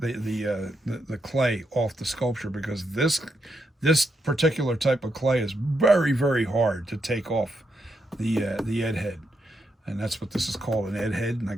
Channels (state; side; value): normal; both; correlation 0.81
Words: clay off the sculpture, because this particular type of clay is very hard to take off the Ed head, and that's what this is called, an Ed head, and I